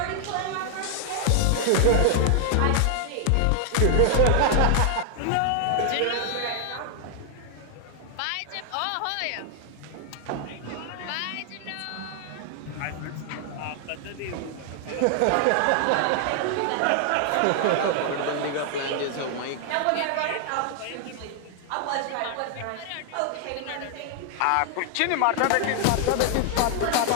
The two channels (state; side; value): different; both; correlation 0.00